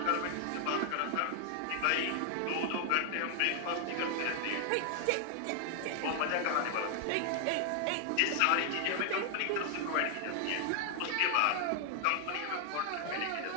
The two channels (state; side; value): different; both; correlation 0.00